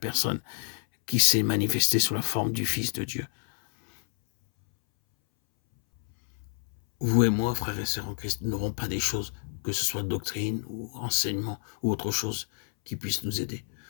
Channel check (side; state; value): right; silent; 59 dB below the other